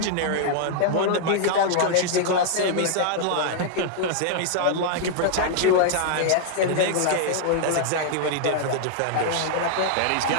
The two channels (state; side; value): different; both; correlation -0.01